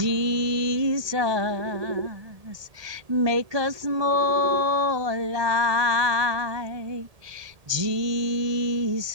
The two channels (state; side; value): late; left; 1.8 ms